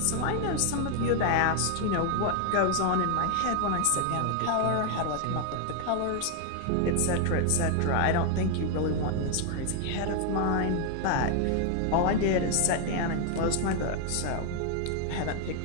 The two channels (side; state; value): both; different; correlation 0.00